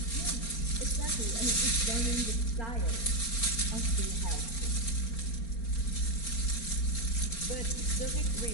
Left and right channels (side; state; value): right; late; 4.3 ms